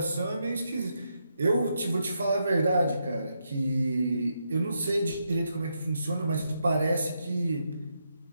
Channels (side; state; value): both; inverted; correlation -0.82